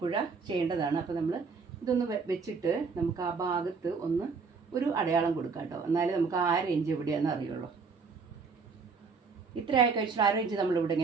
ചെയ്യേണ്ടതാണ്. അപ്പോൾ നമ്മൾ ഇതൊന്ന് വെച്ചിട്ട് നമുക്ക് ആ ഭാഗത്ത് ഒന്ന് ഒരു അടയാളം കൊടുക്കാം കേട്ടോ. എന്നാലും നമുക്ക് 1/2 ഇഞ്ച് എവിടെയാണെന്ന് അറിയുള്ളൂ. ഇത്ര ആയി കഴിച്ചിട്ട് 1/2 ഇഞ്ച് നമ്മളിവിടെ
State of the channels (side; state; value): left; quieter; 5.0 dB